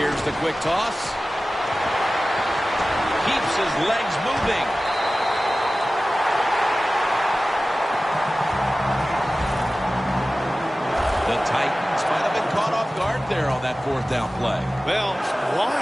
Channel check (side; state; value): both; normal; correlation 0.96